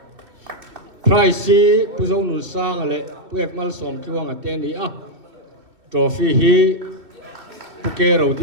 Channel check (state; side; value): late; left; 2.7 ms